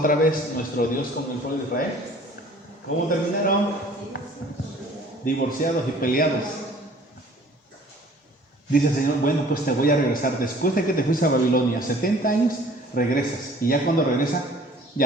vez nuestro Dios con el pueblo de Israel? ¿Cómo terminaron? Divorciados y peleados. Dice el Señor, bueno, pues te voy a regresar. Después de que te fuiste a Babilonia, 70 años, regresas. Y ya cuando regresa,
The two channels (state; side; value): normal; both; correlation 0.52